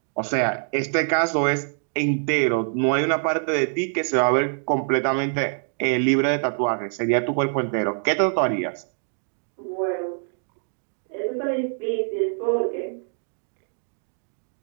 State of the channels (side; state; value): left; silent; digital silence